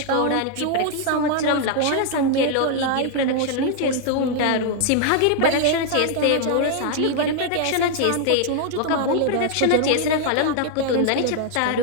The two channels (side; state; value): both; different; correlation 0.00